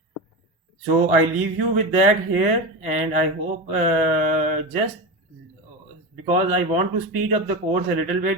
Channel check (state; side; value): normal; both; correlation 0.20